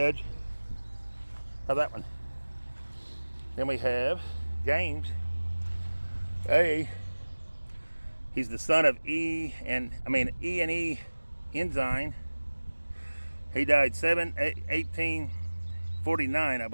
How's that one? Then we have James A. He's the son of E and E Ensign. He died 1849, I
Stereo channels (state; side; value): inverted; both; correlation -1.00